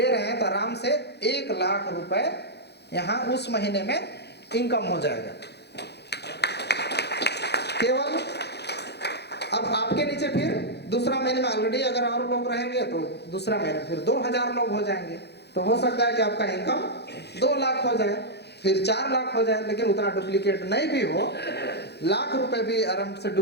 रहे हैं तो आराम से 1 लाख रुपए यहाँ उस महीने में इनकम हो जाएगा। केवल अब आपके नीचे फिर दूसरा महीने में ऑलरेडी अगर और लोग रहेंगे तो दूसरा महीने फिर 2000 लोग हो जाएंगे। तो हो सकता है कि आपका इनकम 2 लाख हो जाए, फिर 4 लाख हो जाए। लेकिन उतना डुप्लीकेट नहीं भी हो, लाख रुपए भी आराम से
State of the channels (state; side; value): late; right; 0.48 ms